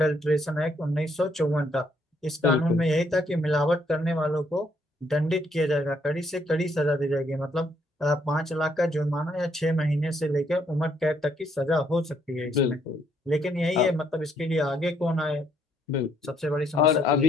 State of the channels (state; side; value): normal; both; correlation 0.71